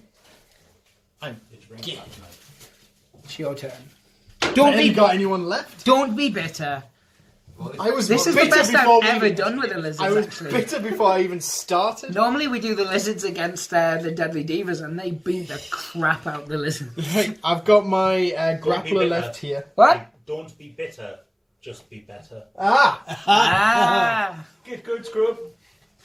It's your turn. Have you got anyone left? Don't be bitter. I was This is the bitter best before I've ever we- done with the lizards, I was actually. bitter before I even started. Normally we do the lizards against the Deadly Divas, and they beat the crap out the lizards. Right, I've got my be grappler bitter. left here. What? Don't be bitter, just be better. Ah! Get good, scrub.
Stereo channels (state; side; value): identical; both; correlation 1.00